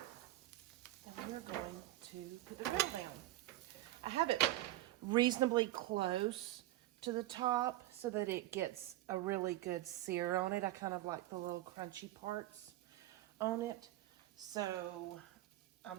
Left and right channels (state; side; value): quieter; left; 16.0 dB